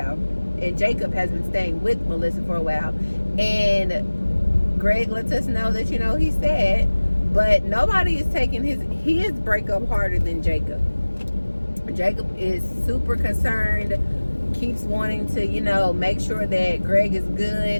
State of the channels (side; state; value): both; inverted; correlation -1.00